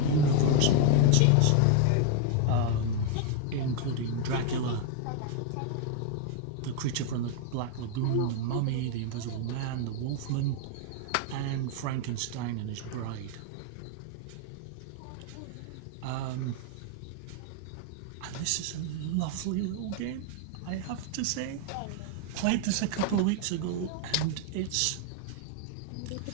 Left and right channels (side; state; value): both; different; correlation 0.00